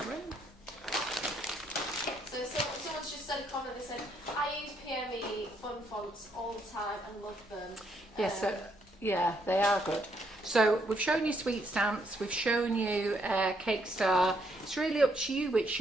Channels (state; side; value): normal; both; correlation 0.73